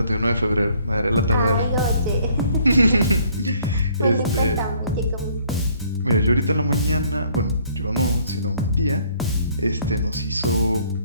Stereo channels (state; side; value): inverted; both; correlation -0.62